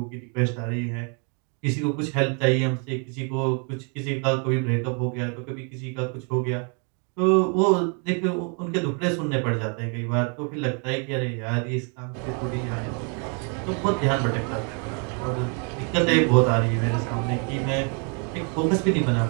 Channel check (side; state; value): left; quieter; 38.7 dB